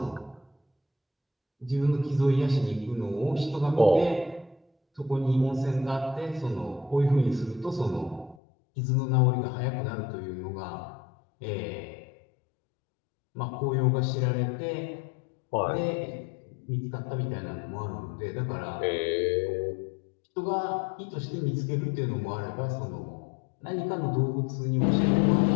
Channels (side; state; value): right; drops out; at 8.3 s